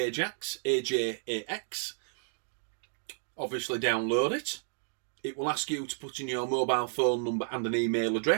AJAX. Obviously download it. It will ask you to put in your mobile phone number and an email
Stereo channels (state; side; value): silent; left; digital silence